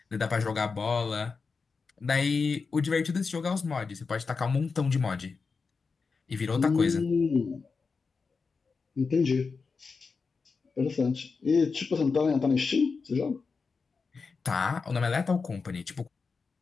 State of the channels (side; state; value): right; quieter; 4.8 dB